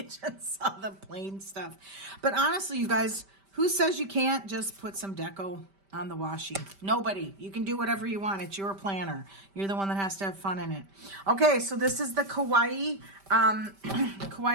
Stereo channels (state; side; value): late; left; 5.1 ms